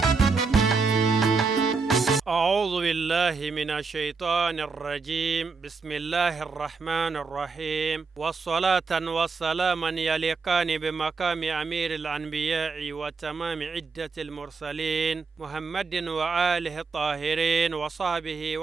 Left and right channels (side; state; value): left; quieter; 4.6 dB